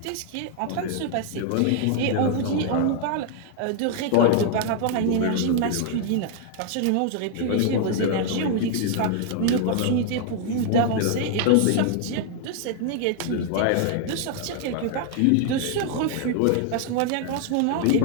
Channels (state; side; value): different; both; correlation -0.01